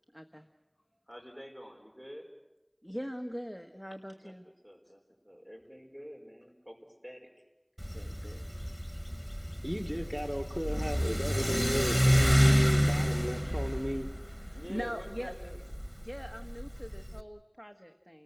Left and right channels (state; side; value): identical; both; correlation 1.00